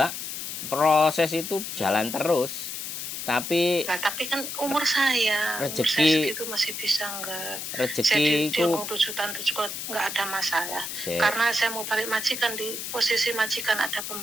Proses itu jalan terus. Tapi Nah, tapi kan umur saya rezeki segitu masih bisa nggak? Saya di rezekiku Hong Kong 7 tahun itu juga nggak ada masalah. se Karena saya mau balik majikan, di posisi majikan ada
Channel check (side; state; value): left; noise; hiss, 6 dB below the sound